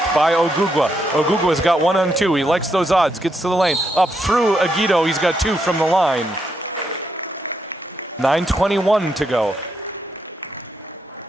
by Ogugwa. Ogugwa's got 1-on-2, he likes those odds, gets to the lane. Up through Aguido, he's got 2 from the line. 9:21 to go.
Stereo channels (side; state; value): both; normal; correlation 0.79